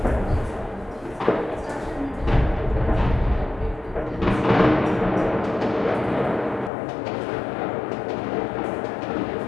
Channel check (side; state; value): right; drops out; at 6.7 s